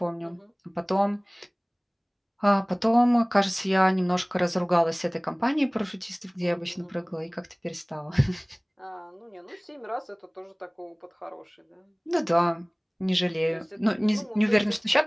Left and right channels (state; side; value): identical; both; correlation 1.00